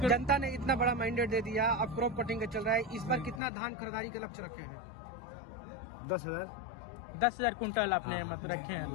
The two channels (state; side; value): drops out; right; at 3.4 s